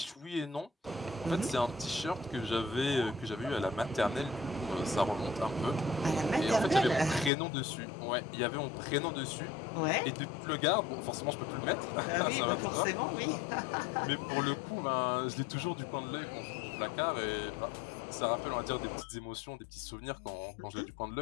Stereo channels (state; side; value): drops out; right; at 7.3 s